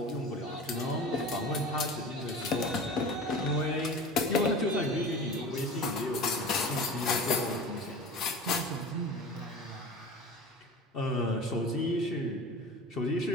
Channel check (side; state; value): both; normal; correlation 0.35